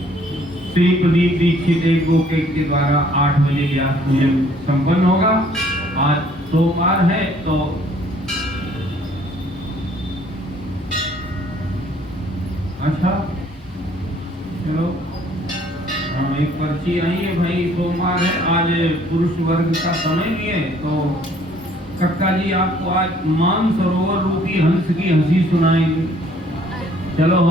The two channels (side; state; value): both; normal; correlation 0.60